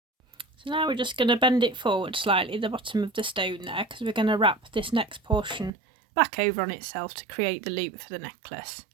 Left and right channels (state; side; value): drops out; left; at 5.7 s